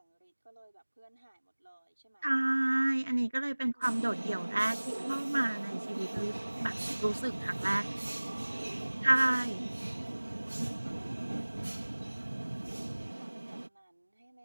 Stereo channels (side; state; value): both; inverted; correlation -1.00